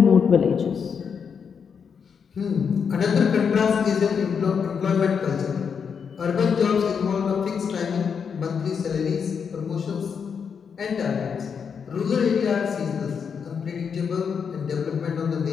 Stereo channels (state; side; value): quieter; right; 6.6 dB